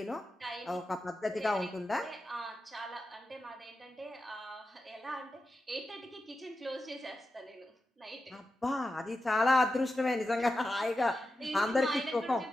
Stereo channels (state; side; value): normal; both; correlation 0.90